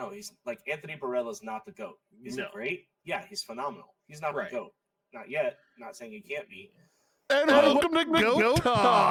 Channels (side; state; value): both; identical; correlation 1.00